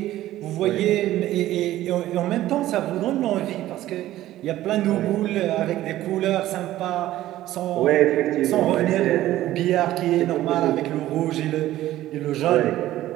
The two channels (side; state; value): left; quieter; 14.5 dB